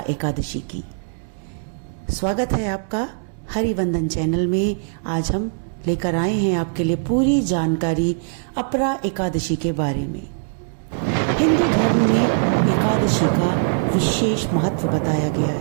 एकादशी की। स्वागत है आपका हरिवंदन चैनल में। आज हम लेकर आए हैं आपके लिए पूरी जानकारी अपरा एकादशी के बारे में। हिंदू धर्म में एकादशी का विशेष महत्व बताया गया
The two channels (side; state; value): left; silent; digital silence